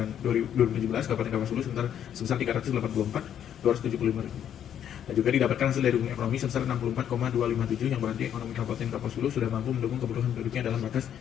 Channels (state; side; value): quieter; right; 9.7 dB